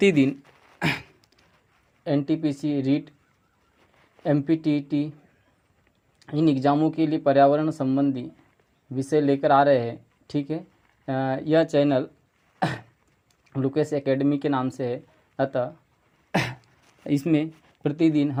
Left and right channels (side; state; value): both; identical; correlation 1.00